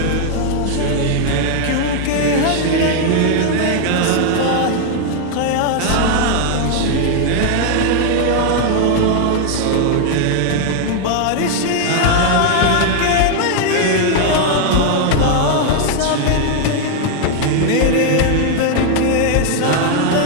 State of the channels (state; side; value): different; both; correlation 0.00